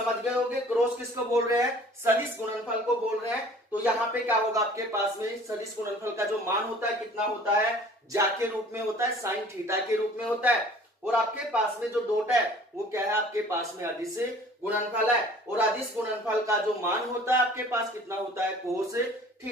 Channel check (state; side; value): normal; both; correlation 0.50